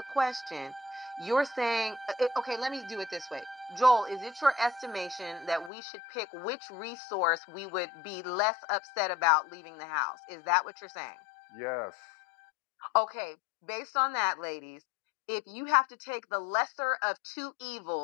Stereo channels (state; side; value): drops out; right; at 5.7 s